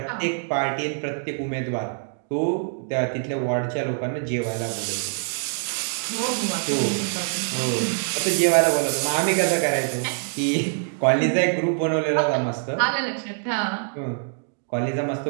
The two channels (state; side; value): silent; left; digital silence